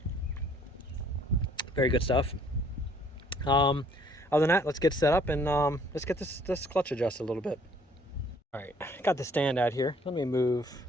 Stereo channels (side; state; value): both; normal; correlation 0.60